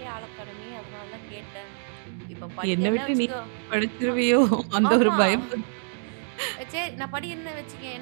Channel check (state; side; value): silent; left; digital silence